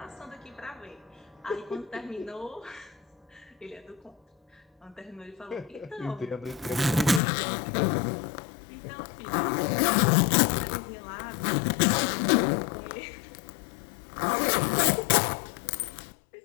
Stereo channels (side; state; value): right; drops out; at 7.2 s